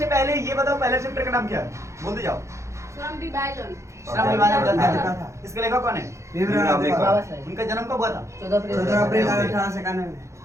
पहले ये बताओ पहला चैप्टर का नाम क्या है, बोलते जाओ। श्रम विभाजन। श्रम विभाजन। इसका लेखक कौन है? उनका जन्म कब हुआ था? 14 अप्रैल 1891 में।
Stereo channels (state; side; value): late; left; 0.14 ms